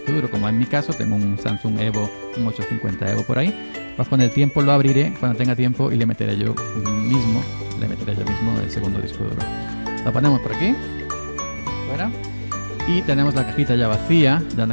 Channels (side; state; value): both; inverted; correlation -1.00